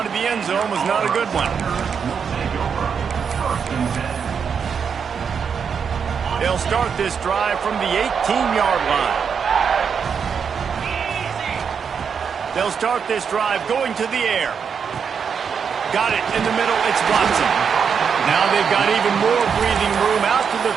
of the end zone was not a good one. They'll start this drive from the 18-yard line. They'll start this drive going to the air. Got it in the middle. It's Watson. Now they've got even more breathing room out to the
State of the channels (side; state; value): left; quieter; 6.7 dB